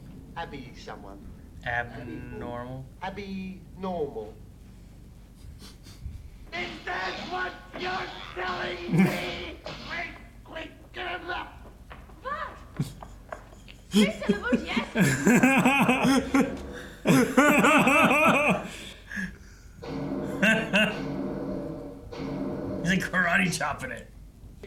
Abby someone. Abnormal. Abby normal. Is that what you're telling me? Quick, get him up. What? 3 syllables, yes. He's like karate chopping it.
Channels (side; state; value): both; identical; correlation 1.00